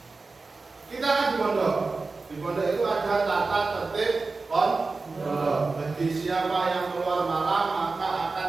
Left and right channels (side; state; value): left; quieter; 3.9 dB